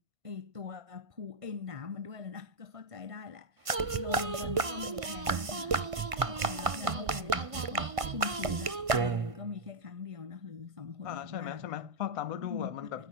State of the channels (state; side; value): late; left; 1.5 ms